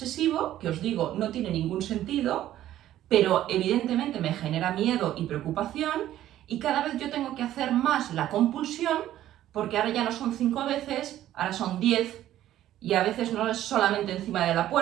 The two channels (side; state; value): left; quieter; 12.9 dB